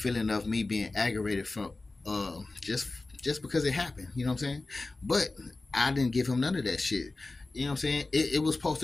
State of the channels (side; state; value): right; quieter; 3.3 dB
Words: of me being aggravated from just because it happened. You know what I'm saying? But I didn't give him none of that shit. You know what I'm saying? It was supposed